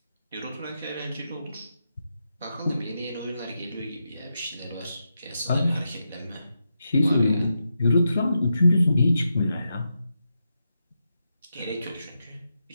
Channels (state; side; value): inverted; both; correlation -0.86